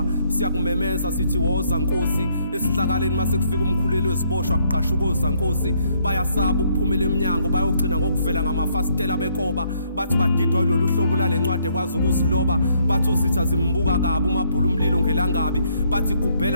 siyakumemeza sithi woza Nkosi esihlakaleni mase kufika umkhuleli weziboshwa kuqasha ukoza Nkosi bayasaba ukuphumela eminyango bayogcina ngokuvela ngamafastela bekoba bathi badidwa lolu hlobo lalencwadi ekwazi ukuziloba bathi uzitha zimbuka kabi umabhulu umlilo ngelangabi bathi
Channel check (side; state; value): both; inverted; correlation -0.70